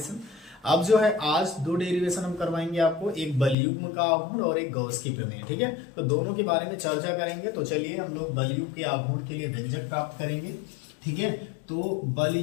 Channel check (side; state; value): right; drops out; at 3.6 s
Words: अब जो है आज 2 डेरिवेशन हम करवाएंगे आपको, एक बलयुग्म का आघूर्ण और एक गॉस की प्रमेय। ठीक है, तो दोनों के बारे में चर्चा करेंगे। तो चलिए हम लोग बलयुग्म के आघूर्ण के लिए व्यंजक प्राप्त करेंगे। ठीक है, तो